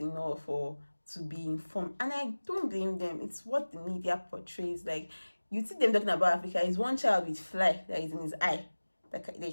or to be informed. And I don't blame them. It's what the media portrays. Like, you see them talking about Africa, is one child with fly that is in his eye, that they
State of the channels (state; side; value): inverted; both; correlation -1.00